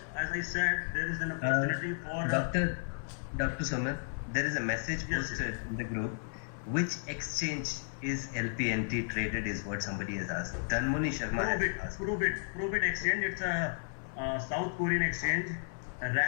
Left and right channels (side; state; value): right; silent; 55 dB below the other